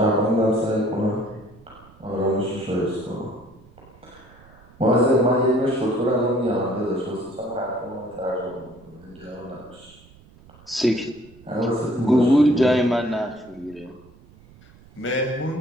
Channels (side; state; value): right; noise; rumble, 25 dB below the sound